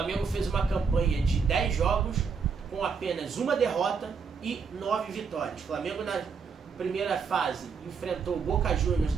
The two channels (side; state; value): left; quieter; 5.6 dB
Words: fez uma campanha de 10 jogos com apenas uma derrota e 9 vitórias. O Flamengo na primeira fase enfrentou o Boca Juniors